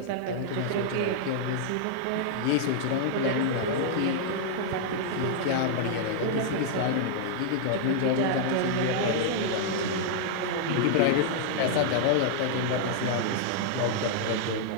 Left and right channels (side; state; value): both; different; correlation -0.01